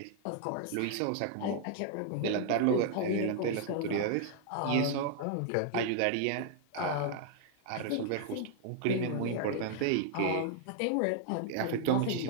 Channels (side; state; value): both; different; correlation -0.01